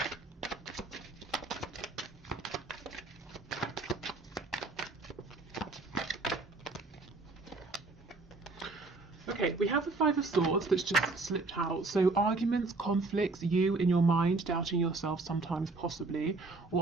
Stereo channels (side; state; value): left; quieter; 3.5 dB